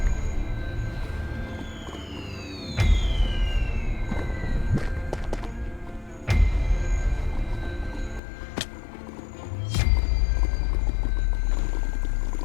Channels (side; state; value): right; drops out; at 8.2 s